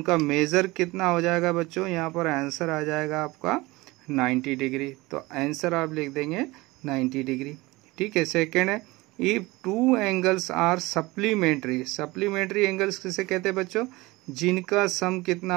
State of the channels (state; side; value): quieter; left; 21.5 dB